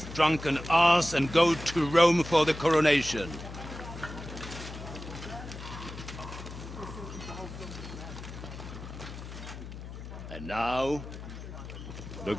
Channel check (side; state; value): left; noise; hum, 11 dB below the sound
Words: drunken ass and go to Rome for the coronation. And now, the